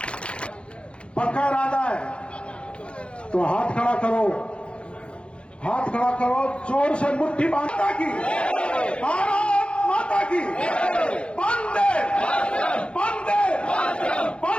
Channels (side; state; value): right; late; 0.058 ms